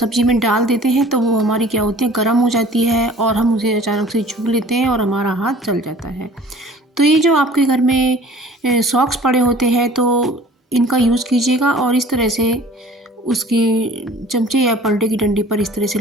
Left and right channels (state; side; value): normal; both; correlation 0.48